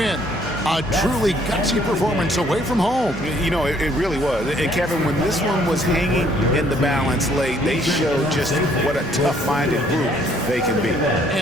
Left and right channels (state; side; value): normal; both; correlation 0.64